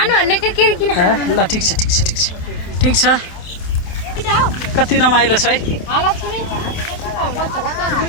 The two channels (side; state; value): right; late; 28 ms